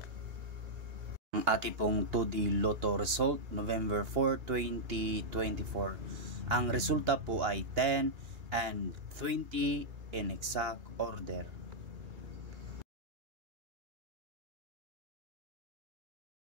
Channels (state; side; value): late; left; 2.8 ms